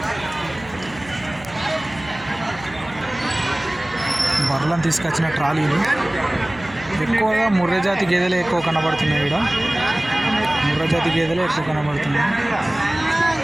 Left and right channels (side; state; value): right; noise; hum, 19 dB below the sound